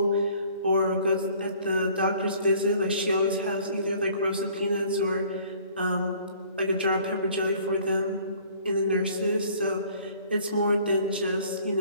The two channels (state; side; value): inverted; both; correlation -0.54